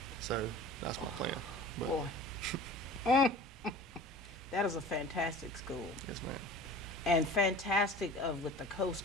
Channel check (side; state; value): both; normal; correlation 0.40